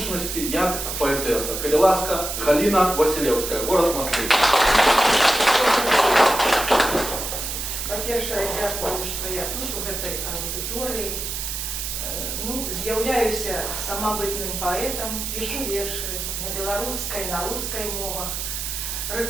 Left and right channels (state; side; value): noise; right; hiss, 4 dB below the sound